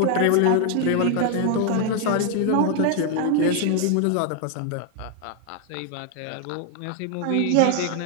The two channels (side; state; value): both; different; correlation 0.00